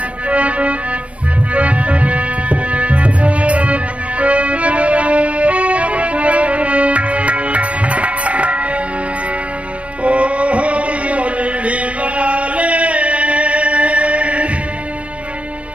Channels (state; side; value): late; left; 0.063 ms